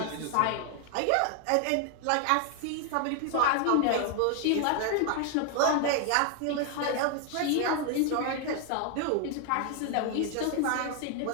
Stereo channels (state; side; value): different; both; correlation 0.00